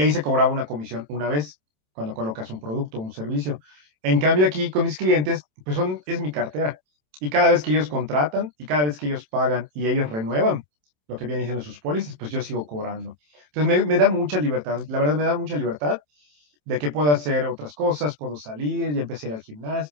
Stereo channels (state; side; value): late; left; 27 ms